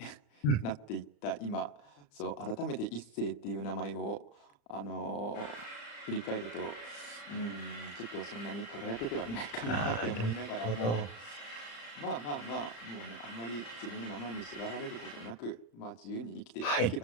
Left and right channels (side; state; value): right; late; 35 ms